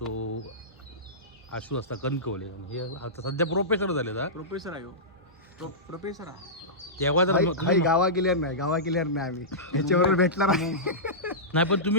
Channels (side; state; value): both; normal; correlation -0.16